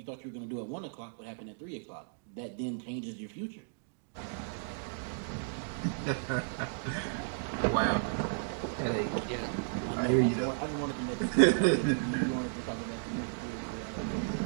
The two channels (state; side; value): silent; left; digital silence